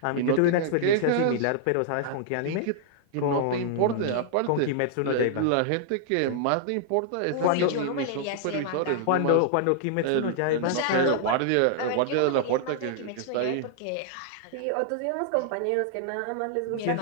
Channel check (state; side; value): different; both; correlation -0.01